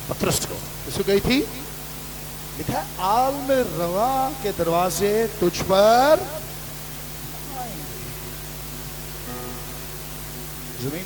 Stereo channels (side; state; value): both; identical; correlation 1.00